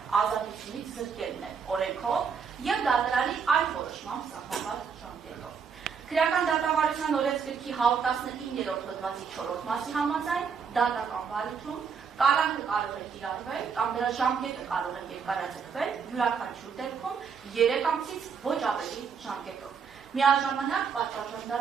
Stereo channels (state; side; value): quieter; left; 6.3 dB